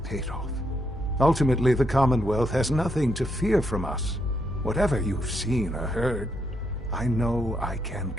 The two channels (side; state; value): both; normal; correlation 0.78